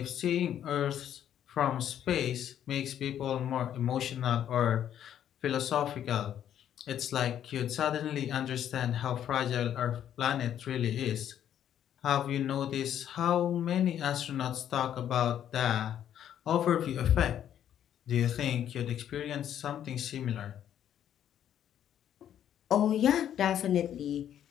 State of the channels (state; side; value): quieter; right; 10.2 dB